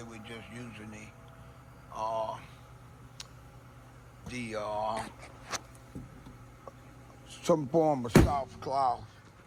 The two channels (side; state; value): both; identical; correlation 1.00